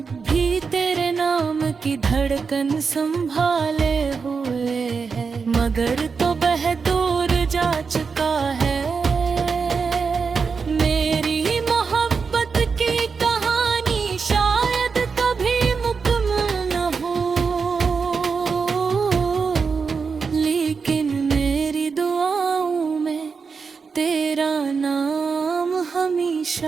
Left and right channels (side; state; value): left; quieter; 5.3 dB